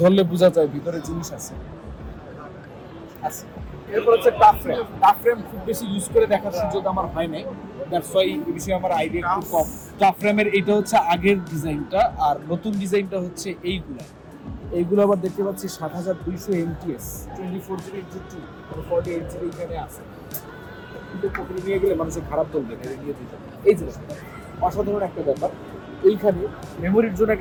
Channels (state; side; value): identical; both; correlation 1.00